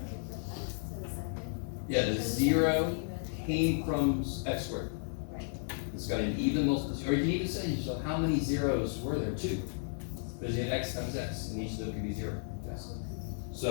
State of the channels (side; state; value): right; silent; digital silence